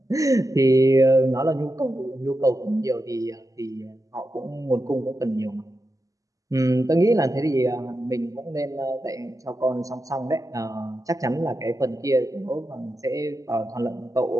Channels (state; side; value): late; left; 0.16 ms